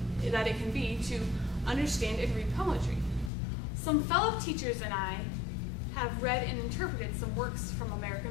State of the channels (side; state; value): right; drops out; at 3.3 s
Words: that it can be to understand and read poetry. Some fellow teachers and I have read and interpreted some works from